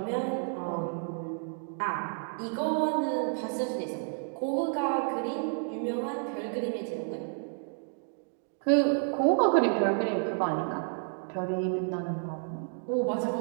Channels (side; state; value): left; silent; 57 dB below the other